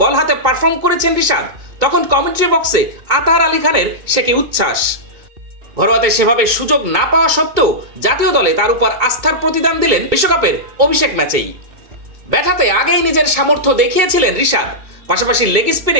বল হাতে পারফর্ম করেছেন রিশাদ, তখন কমেন্ট্রি বক্সে আতার আলী খানের সে কি উচ্ছ্বাস। ঘরোয়াতে সেভাবে সুযোগ না পাওয়া সত্ত্বেও জাতীয় দলে তার উপর আস্থার প্রতিদান দিলেন বিশ্বকাপের অভিষেক ম্যাচেই। ব্যাট হাতে আগেই নিজের সামর্থ্য দেখিয়েছিলেন রিশাদ, পাশাপাশি লেগ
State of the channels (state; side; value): late; left; 2.2 ms